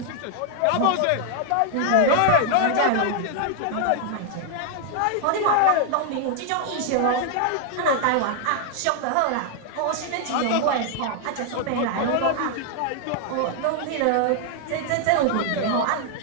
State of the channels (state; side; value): different; both; correlation 0.00